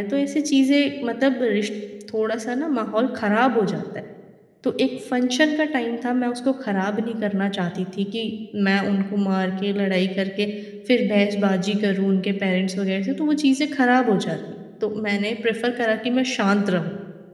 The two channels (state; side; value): identical; both; correlation 1.00